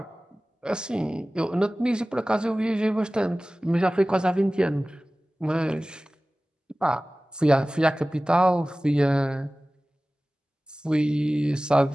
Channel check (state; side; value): normal; both; correlation 0.98